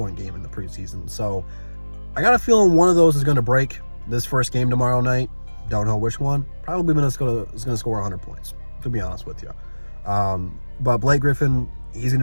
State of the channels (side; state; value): both; inverted; correlation -1.00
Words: game in the preseason. So I got a feeling one of those is going to break this first game tomorrow night. Don't know which one. Probably Minnesota is going to score 100 points, to be honest with you. But Blake Griffin, he's going